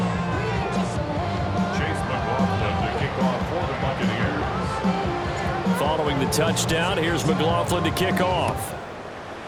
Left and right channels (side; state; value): both; identical; correlation 1.00